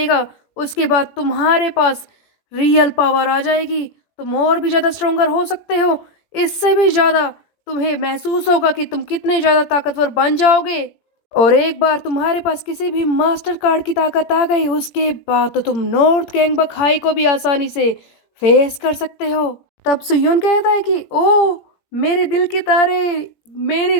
उसके बाद तुम्हारे पास रियल पावर आ जाएगी, तुम और भी ज़्यादा स्ट्रोंगर हो सकते हो, इससे भी ज़्यादा तुम्हें महसूस होगा कि तुम कितने ज़्यादा ताकतवर बन जाओगे। और एक बार तुम्हारे पास किसी भी मास्टर कार्ड की ताकत आ गई उसके बाद तो तुम नॉर्थ गैंगबक हाई को भी आसानी से फेस कर सकते हो। तब सुयोन कहता है कि ओ मेरे दिल के तारे, मेरी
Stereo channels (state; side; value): late; right; 17 ms